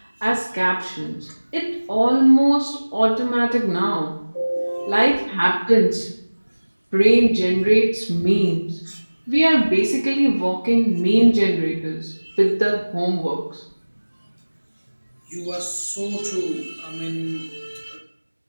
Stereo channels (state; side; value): inverted; both; correlation -1.00